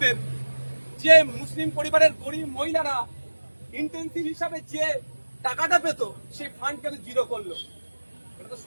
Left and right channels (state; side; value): inverted; both; correlation -1.00